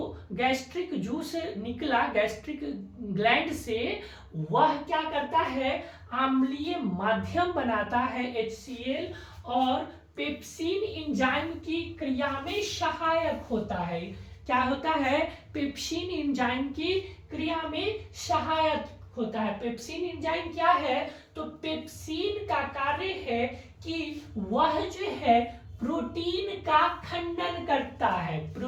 जूस निकला गैस्ट्रिक ग्लैंड से, वह क्या करता है, अम्लीय माध्यम बनाता है HCl, और पेप्सिन एंजाइम की क्रिया में सहायक होता है। क्या होता है, पेप्सिन एंजाइम की क्रिया में सहायक होता है। पेप्सिन एंजाइम क्या है, तो पेप्सिन का कार्य है कि वह जो है प्रोटीन का खंडन करता है।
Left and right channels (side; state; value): both; identical; correlation 1.00